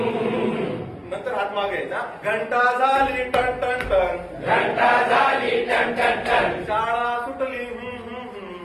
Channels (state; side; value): identical; both; correlation 1.00